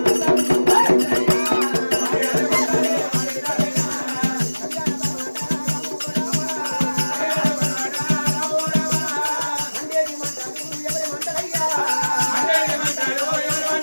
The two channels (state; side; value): inverted; both; correlation -1.00